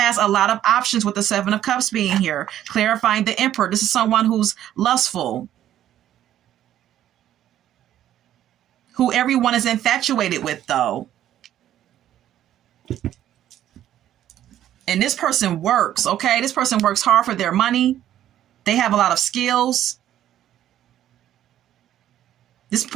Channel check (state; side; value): quieter; left; 11.8 dB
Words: a lot of options with the Seven of Cups being here. Clarifying the Emperor. This is someone who's lustful, who everyone is infatuated with, though. And this person works, okay? This person works hard for their money. They have a lot of skills. This